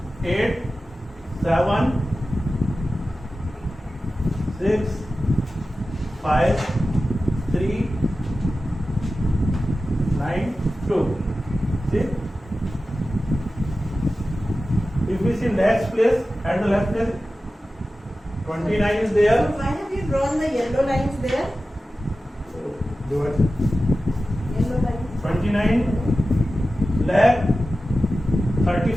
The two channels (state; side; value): normal; both; correlation 0.94